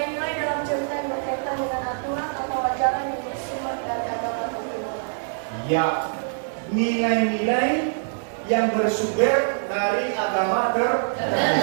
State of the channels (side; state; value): left; silent; digital silence